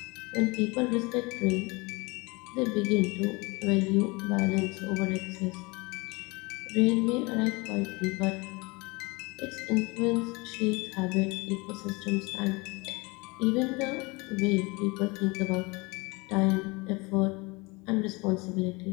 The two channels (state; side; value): quieter; right; 26.1 dB